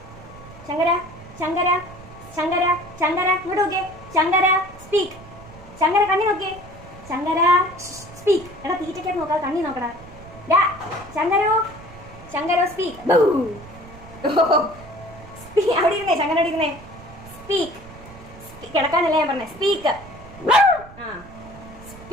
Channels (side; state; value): right; noise; rumble, 18 dB below the sound